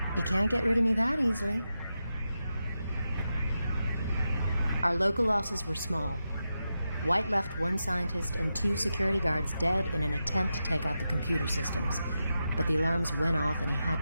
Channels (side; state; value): both; inverted; correlation -0.89